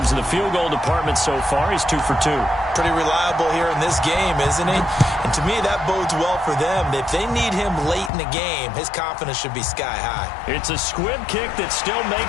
in the field goal department so far. He's 2 for 2. Pretty reliable here in this game, isn't he? And to me, that bodes well for them. If they need him late in the game, his confidence should be sky high. It's a squib kick that still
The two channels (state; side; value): drops out; right; at 8.1 s